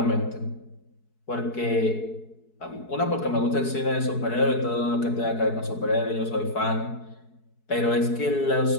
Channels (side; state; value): right; late; 4.7 ms